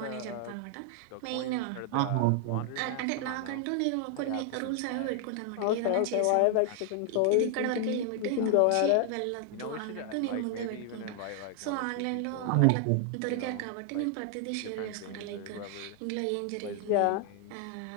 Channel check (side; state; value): both; different; correlation 0.00